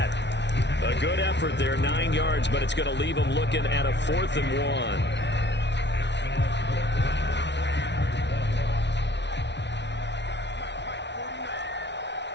A good effort there, 9 yards, but it's going to leave him looking at a 4th and 1.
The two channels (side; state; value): right; late; 0.51 ms